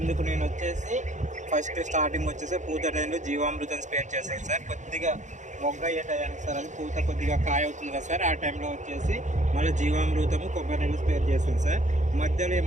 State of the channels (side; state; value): left; late; 0.35 ms